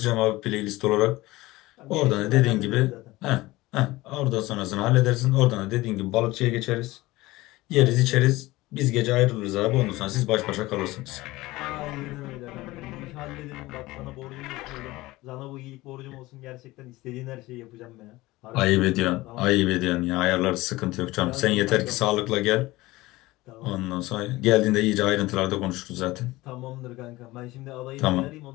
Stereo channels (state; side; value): quieter; right; 19.4 dB